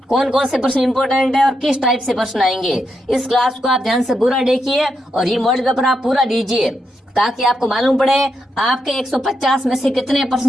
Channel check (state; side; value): normal; both; correlation 0.83